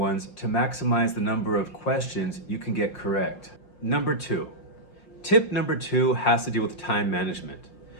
to maximize the number of questions you can get correct. Number 2. Tip number 2 has to do with time management.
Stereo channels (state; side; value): late; right; 5.6 ms